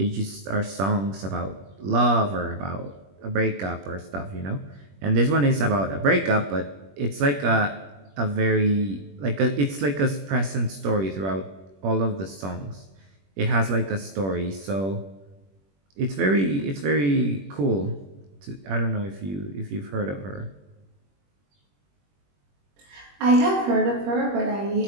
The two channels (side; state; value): left; late; 21 ms